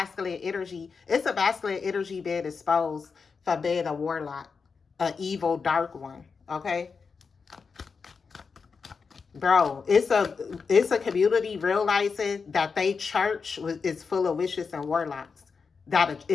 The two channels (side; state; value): right; quieter; 5.2 dB